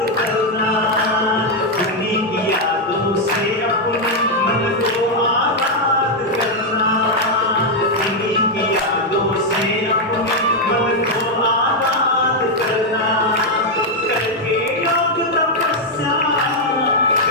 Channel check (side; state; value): both; normal; correlation 0.01